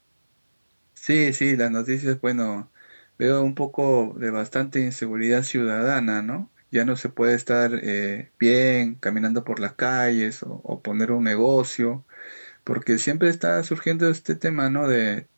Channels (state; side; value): inverted; both; correlation -1.00